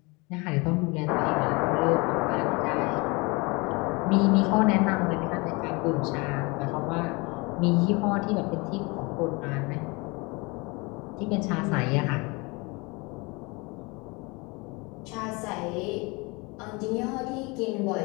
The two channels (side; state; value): right; quieter; 27.1 dB